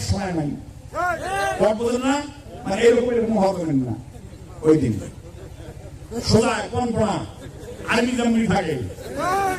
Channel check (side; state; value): both; identical; correlation 1.00